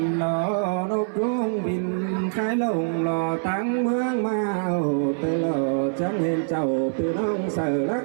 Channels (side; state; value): left; silent; 59 dB below the other